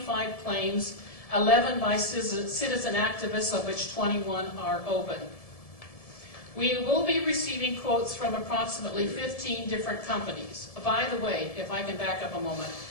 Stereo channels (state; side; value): late; right; 1.7 ms